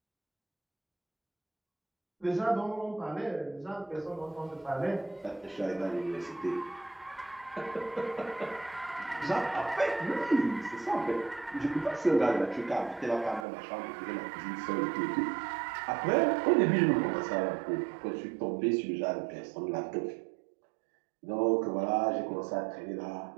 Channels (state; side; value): drops out; left; at 13.5 s